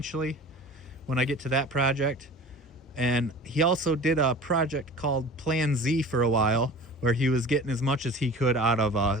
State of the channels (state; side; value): normal; both; correlation 0.40